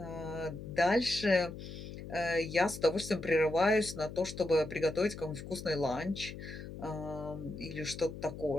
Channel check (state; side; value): noise; left; hum, 11 dB below the sound